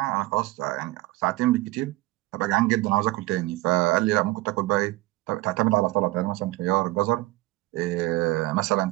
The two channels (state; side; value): quieter; left; 19.8 dB